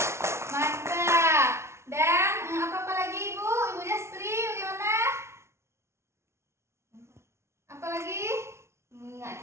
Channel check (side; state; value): left; late; 0.13 ms